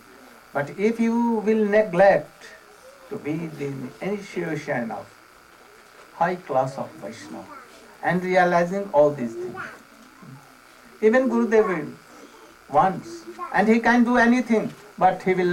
But if you will neglect to be the initiation of high class of Vaishnava and realizing all these things, even Gurudev will once, and he can do anything, but he will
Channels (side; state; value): both; identical; correlation 1.00